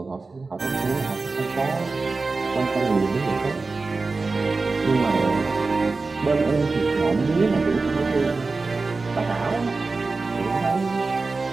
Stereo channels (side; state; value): left; quieter; 3.9 dB